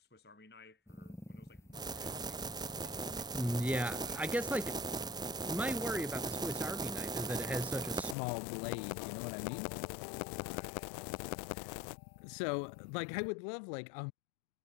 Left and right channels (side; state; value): right; drops out; at 8.2 s